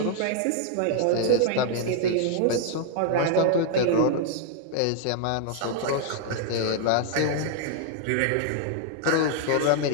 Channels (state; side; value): different; both; correlation 0.00